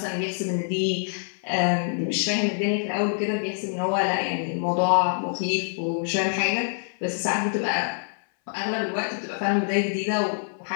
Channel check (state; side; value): silent; right; 60 dB below the other